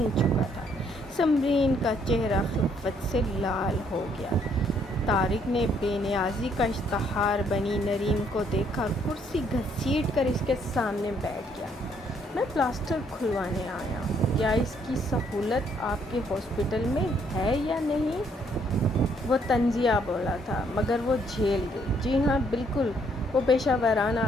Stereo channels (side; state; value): both; normal; correlation 0.68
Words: چکا تھا۔ سمرین کا چہرہ خفت سے لال ہو گیا۔ طارق نے بے نیازی کا اشتہار بنی نریم کو دیکھا، کرسی گھسیٹ کر اس کے سامنے بیٹھ گیا۔ میں پلاسٹر کھلوانے آیا ہوں۔ کیا اس کی سہولت آپ کے ہاسپٹل میں ہے یا نہیں؟ وہ طنزیہ بولا تھا، مگر وہ جھیل گئی۔ جی ہاں، بالکل، وہ پیشہ ورانہ